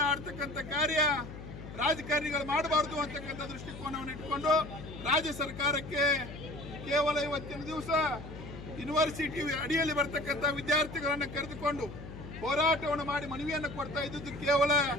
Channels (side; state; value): left; noise; hum, 12 dB below the sound